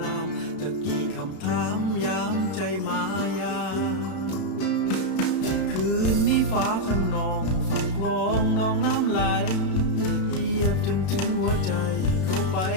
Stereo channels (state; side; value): late; right; 32 ms